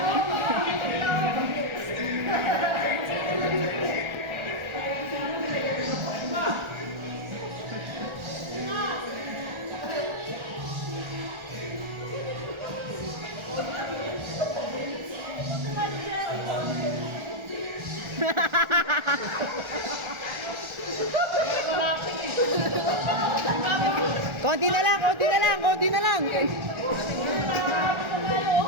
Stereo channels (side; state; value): left; late; 1.4 ms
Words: Konti na lang, konti na lang, konti na lang.